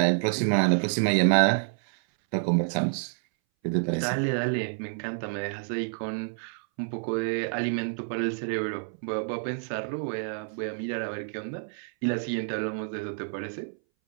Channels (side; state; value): left; silent; 59 dB below the other